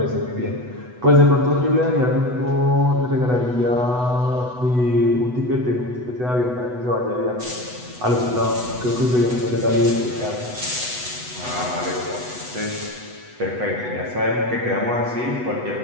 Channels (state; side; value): late; left; 8.1 ms